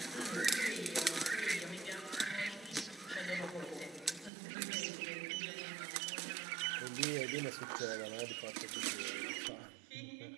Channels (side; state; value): left; drops out; at 4.3 s